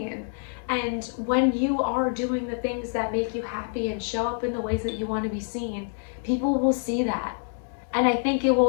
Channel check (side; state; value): right; silent; 61 dB below the other